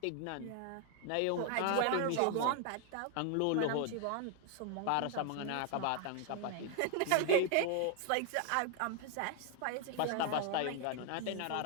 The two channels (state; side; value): different; both; correlation 0.00